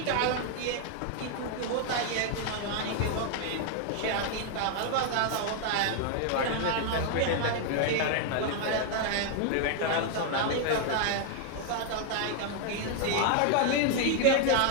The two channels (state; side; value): different; both; correlation 0.00